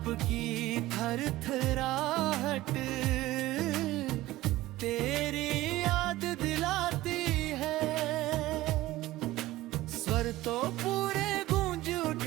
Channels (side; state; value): left; quieter; 17.0 dB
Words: की थरथराहट तेरी याद दिलाती है। स्वर तो पूरे गूंज